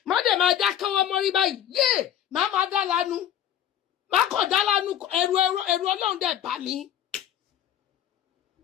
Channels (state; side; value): quieter; right; 10.6 dB